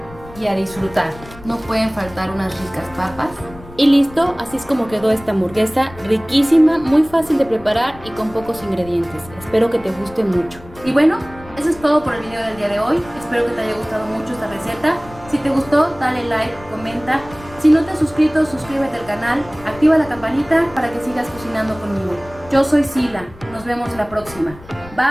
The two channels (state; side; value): noise; left; rumble, 19 dB below the sound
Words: y a disfrutar. No pueden faltar unas ricas papas. Y listo, así es como quedó esta hamburguesa, riquísima, muy fácil de preparar y con pocos ingredientes. Espero que te guste mucho. Y bueno, eso es todo por el video del día de hoy. Espero que te haya gustado mucho esta receta. Si te gustó, dale like, comenta. Si no te has suscrito, suscríbete al canal, activa la campanita para que sigas cocinando conmigo. Yo soy Sila, nos vemos la próxima.